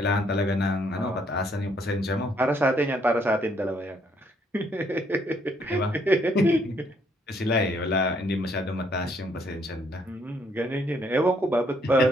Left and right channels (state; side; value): normal; both; correlation 0.69